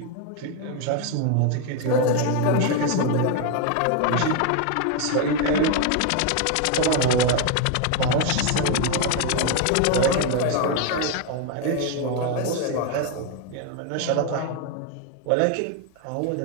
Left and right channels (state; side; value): different; both; correlation 0.01